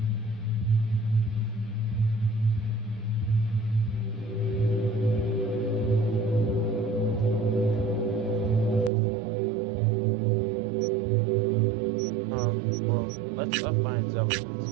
Well, let's find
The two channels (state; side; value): drops out; left; at 8.9 s